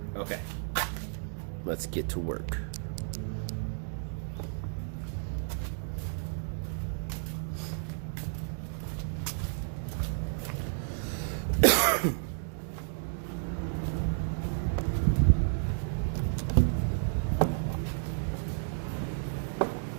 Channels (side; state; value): left; silent; digital silence